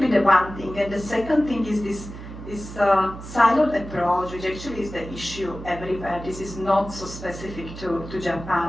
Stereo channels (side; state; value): right; noise; hum, 12 dB below the sound